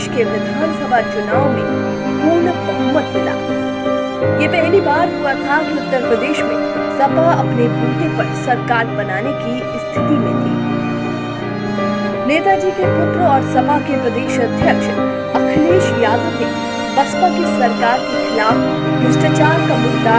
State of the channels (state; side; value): identical; both; correlation 1.00